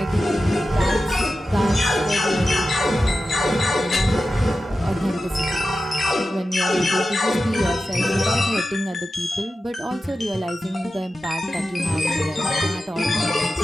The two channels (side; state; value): both; normal; correlation 0.92